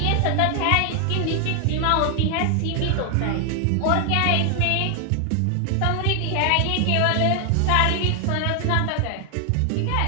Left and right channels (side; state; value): both; different; correlation 0.00